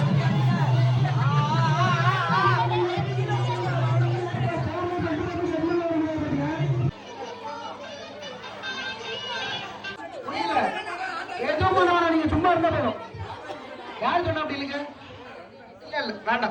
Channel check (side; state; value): both; identical; correlation 1.00